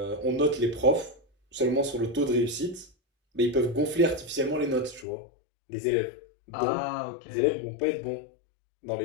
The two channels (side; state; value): right; drops out; at 5.1 s